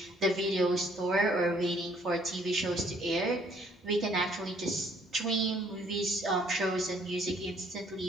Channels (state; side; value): normal; both; correlation 0.63